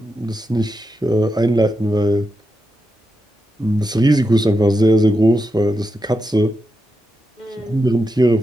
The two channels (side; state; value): both; normal; correlation 0.87